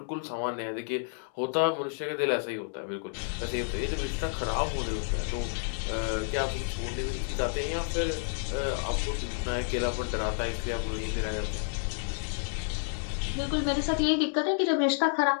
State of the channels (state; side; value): silent; right; 58 dB below the other